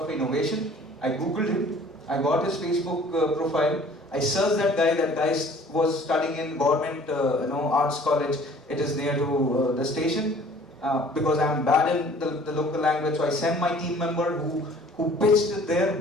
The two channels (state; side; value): normal; both; correlation 0.52